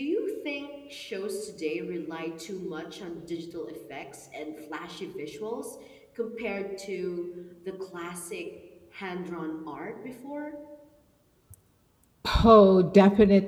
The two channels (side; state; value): both; identical; correlation 1.00